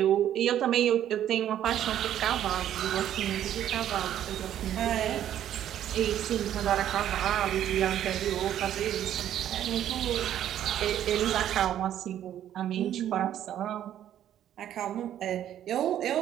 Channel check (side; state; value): left; quieter; 11.1 dB